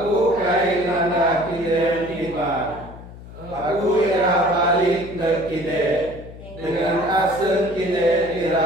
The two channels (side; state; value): left; noise; hum, 16 dB below the sound